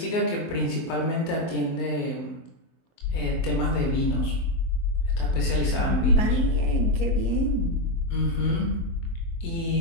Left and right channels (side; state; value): right; late; 24 ms